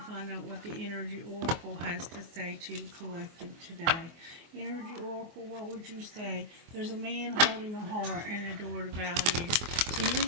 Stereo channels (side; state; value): left; late; 24 ms